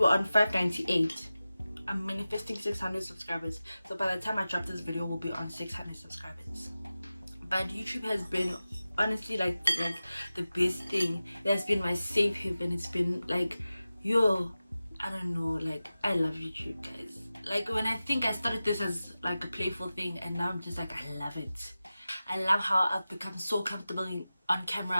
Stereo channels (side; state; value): both; inverted; correlation -0.95